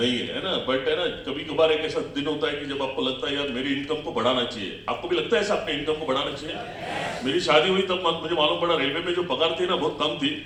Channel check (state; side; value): identical; both; correlation 1.00